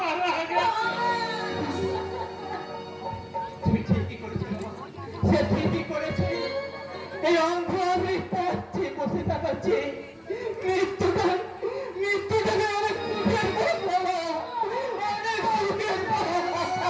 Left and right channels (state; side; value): identical; both; correlation 1.00